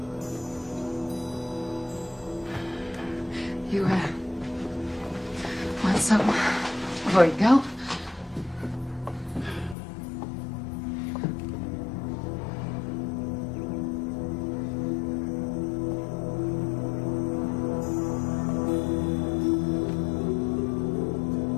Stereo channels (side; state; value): right; drops out; at 9.8 s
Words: You, want something before you go?